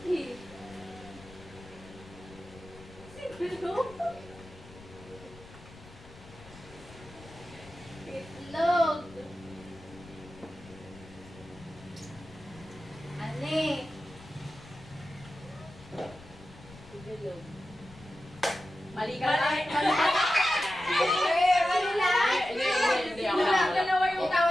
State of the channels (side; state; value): left; noise; rumble, 20 dB below the sound